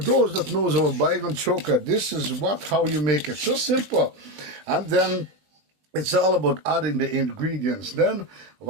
that knows about Baighan Choka, this is how you make it. So simple. And then it's all about adding the ingredients. Then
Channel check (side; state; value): left; late; 20 ms